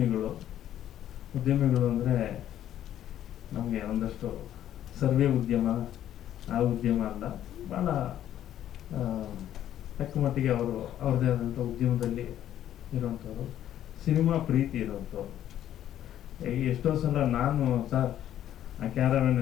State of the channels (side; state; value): right; quieter; 11.5 dB